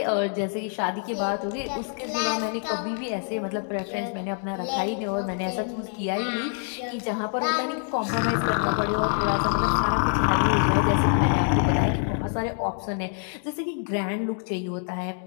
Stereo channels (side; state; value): right; silent; 57 dB below the other